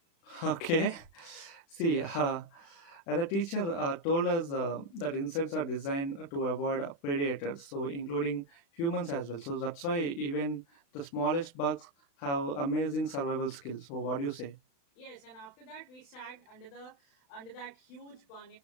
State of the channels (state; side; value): late; right; 36 ms